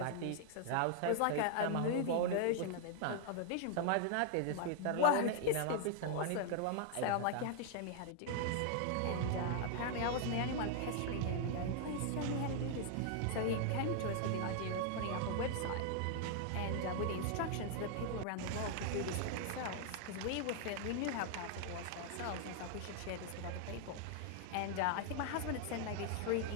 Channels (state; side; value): different; both; correlation 0.00